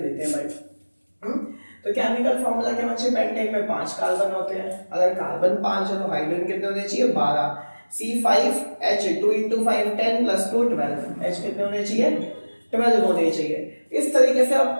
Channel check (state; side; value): inverted; both; correlation -1.00